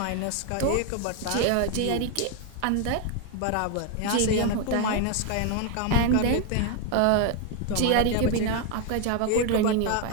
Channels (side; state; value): both; different; correlation 0.01